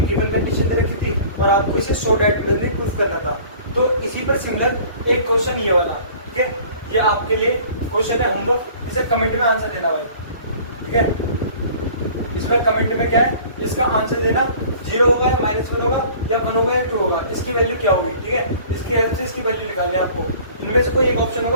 गिवन कंडीशन दे रखी थी और आपको इसे 100 डायरेक्ट में प्रूफ करना था, तो इसी पर सिमिलर एक क्वेश्चन ये वाला, ठीक है, ये आपके लिए क्वेश्चन है होमवर्क, इसे कमेंट में आंसर देना भाई, ठीक है। इसमें कमेंट में क्या है, इसका आंसर देना, 0 होगा या -1 होगा या 1 होगा या 2 होगा, इसकी वैल्यू क्या होगी, ठीक है। इसके हेल्प से इसकी वैल्यू निकालनी है आपको, इनमें से कोई एक ऑप्शन होगा,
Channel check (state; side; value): inverted; both; correlation -0.48